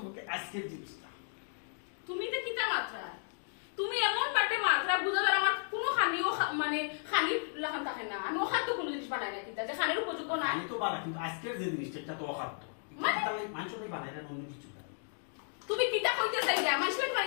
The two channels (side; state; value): right; silent; 55 dB below the other